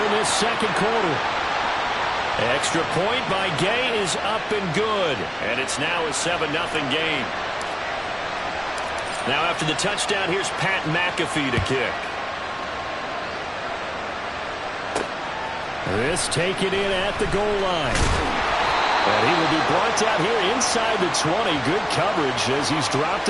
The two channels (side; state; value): both; identical; correlation 1.00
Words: in this 2nd quarter. Extra point by Gay is up and good. And it's now a 7-0 game. Now after the touchdown, here's Pat McAfee to kick. This taken in at the goal line. And he will be brought down here inside the 20. Good coverage as he's dropped